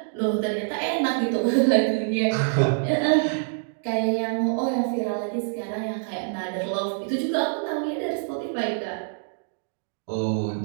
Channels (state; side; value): silent; left; digital silence